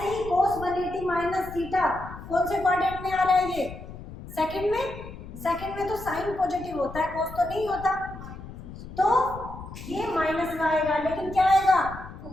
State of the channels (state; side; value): noise; left; rumble, 13 dB below the sound